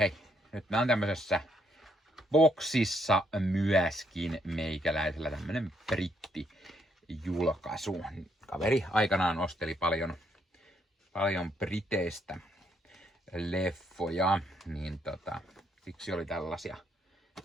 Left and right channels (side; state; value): both; normal; correlation 0.73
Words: nyt mä oon tämmöisessä boksissa myöskin meikäläisellä tämmönen brittijulkaisu. Kaveri aikanaan osteli paljon briteistä leffoja, niin siksi oli tällaisia